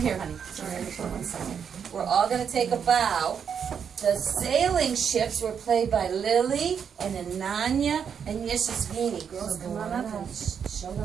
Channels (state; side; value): quieter; left; 7.3 dB